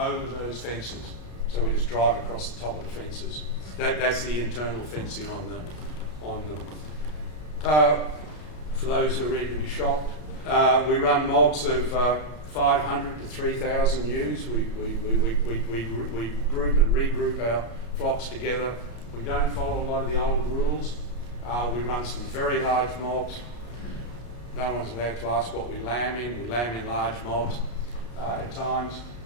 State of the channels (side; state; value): right; late; 33 ms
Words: those fences. So we just drive across the top of the fences. That's the internal fencing on them. For those who are ready to be shocked, we run mobs of 500 to 3,000 ewes. We group and regroup our flocks together. We don't follow a lot of the old rules. We run some very large mobs. No one's allowed to ask what we lamb in. We lamb in large mobs at times,